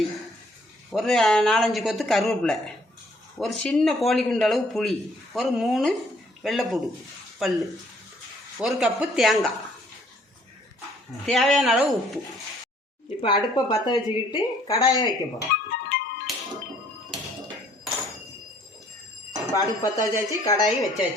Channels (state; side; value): normal; both; correlation 0.62